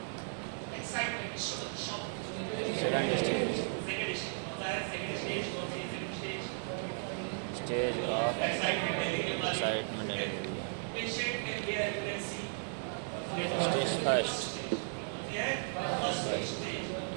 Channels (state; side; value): silent; left; digital silence